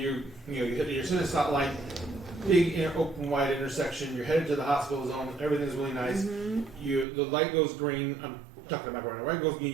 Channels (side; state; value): left; drops out; at 7.1 s